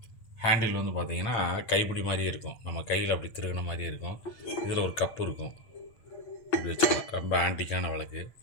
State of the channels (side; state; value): right; late; 8.8 ms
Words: ஹேண்டில் வந்து பார்த்திங்கன்னா கைப்பிடி மாதிரியே இருக்கும், நம்ம கையில் அப்படி திருகின மாதிரியே இருக்கும். இதில் ஒரு கப்பு இருக்கும், இப்படி வச்சுக்கலாம். ரொம்ப ஆன்டிக்கான விளக்கு.